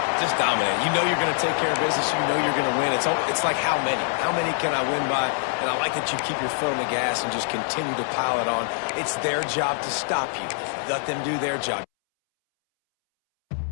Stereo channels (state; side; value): silent; right; 62 dB below the other